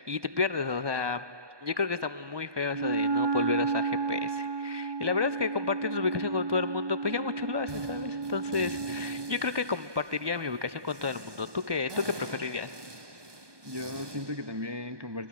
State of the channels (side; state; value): left; late; 1.2 ms